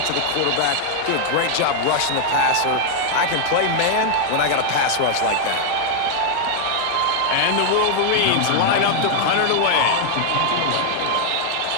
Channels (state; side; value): different; both; correlation 0.00